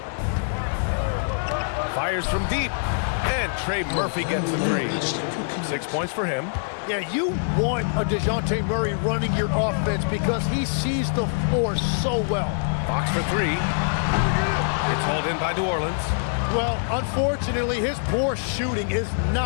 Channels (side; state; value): right; silent; digital silence